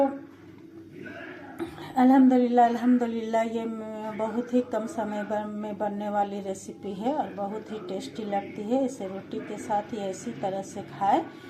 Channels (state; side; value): identical; both; correlation 1.00